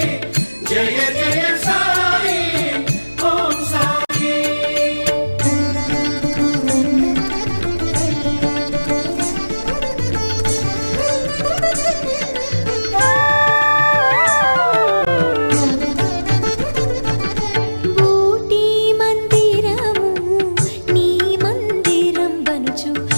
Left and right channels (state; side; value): inverted; both; correlation -1.00